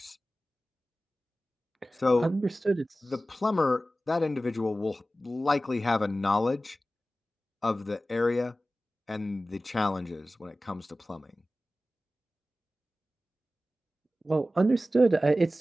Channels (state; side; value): normal; both; correlation 0.95